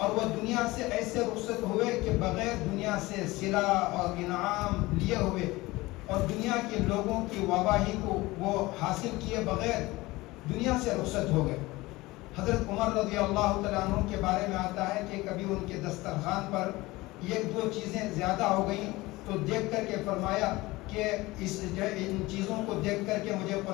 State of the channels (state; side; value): quieter; right; 20.4 dB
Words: وہ دنیا سے ایسے رخصت ہوئے کہ بغیر دنیا سے صلہ اور انعام لیے ہوئے اور دنیا کے لوگوں کی واہواہی کو وہ حاصل کیے بغیر دنیا سے رخصت ہو گئے۔ حضرت عمر رضی اللہ تعالیٰ عنہ کے بارے میں آتا ہے کہ کبھی ان کے دسترخوان پر ایک دو چیزیں زیادہ ہو گئیں تو دیکھ کر کے فرمایا کہ ان چیزوں کو دیکھ کر کے مجھے